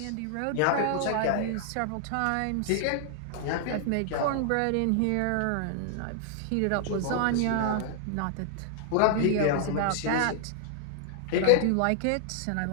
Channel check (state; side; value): different; both; correlation 0.00